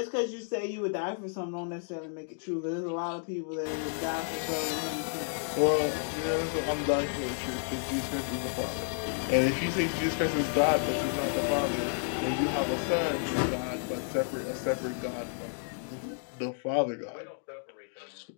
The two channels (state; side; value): silent; right; digital silence